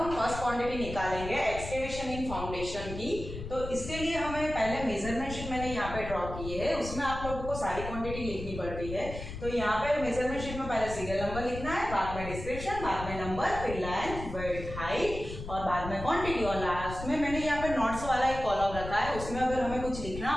फर्स्ट क्वांटिटी निकालेंगे एक्सकेवेशन इन फाउंडेशन की। तो इसके लिए हमें पहले मेजरमेंट शीट मैंने यहाँ पे ड्रॉ की है, उसमें आप लोगों को सारी क्वांटिटी लिखनी पड़ती है। तो यहाँ पे मेजरमेंट शीट में पहले सीरियल नंबर लिखना है, बाद में डिस्क्रिप्शन, बाद में नंबर, फिर लेंथ, विड्थ, हाइट और बाद में क्वांटिटी, और लास्ट में मैंने यहाँ पे नोट्स वाला एक कॉलम रखा है, उसमें अगर हमें कुछ लिखना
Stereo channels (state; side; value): noise; left; rumble, 9 dB below the sound